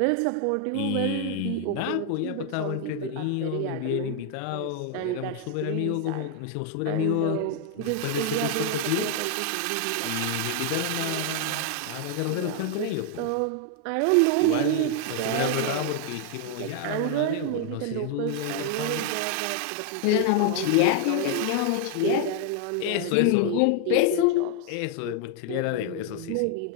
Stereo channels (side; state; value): both; different; correlation 0.00